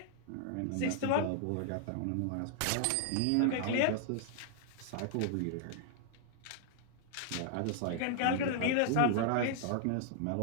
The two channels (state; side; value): different; both; correlation -0.01